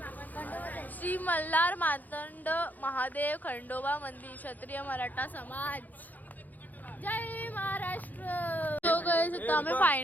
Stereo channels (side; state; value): right; late; 0.082 ms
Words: श्री मल्हार मातंड महादेव खंडोबा मंदिर क्षत्रिय मराठा समाज. जय महाराष्ट्र. तो गाइस आता आम्ही